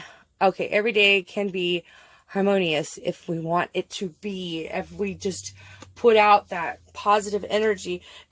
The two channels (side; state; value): both; identical; correlation 1.00